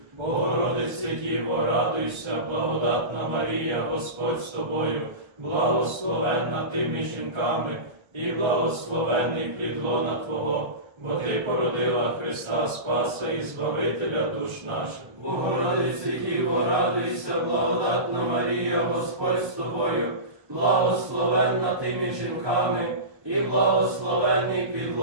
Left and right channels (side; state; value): left; late; 1.2 ms